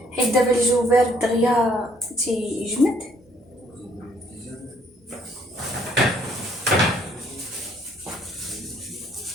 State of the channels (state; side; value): normal; both; correlation 0.65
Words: حيت دابا الجو بارد دغيا تيجمد.